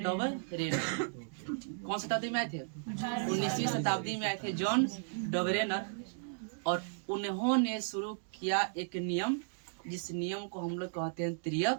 कौन शताब्दी में आए थे? 19वीं शताब्दी में आए थे जॉन डबरेनर, और उन्होंने शुरू किया एक नियम, जिस नियम को हम लोग कहते हैं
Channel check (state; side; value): silent; left; digital silence